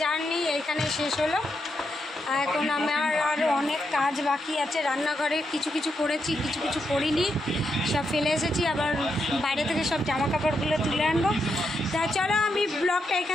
এইখানে শেষ হলো। এখন আমার আরও অনেক কাজ বাকি আছে। রান্নাঘরে কিছু করেছি, কিছু করিনি, সব ফেলে এসেছি। আবার বাইরে থেকে সব জামা কাপড়গুলো তুলে আনবো। তা চলো, আমি ব্লগটা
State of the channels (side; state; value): both; normal; correlation 0.82